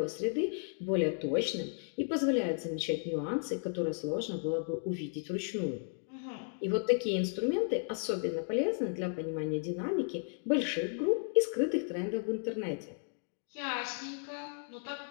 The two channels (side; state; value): right; silent; 55 dB below the other